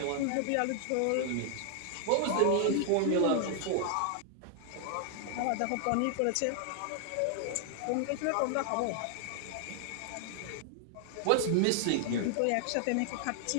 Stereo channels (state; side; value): different; both; correlation 0.00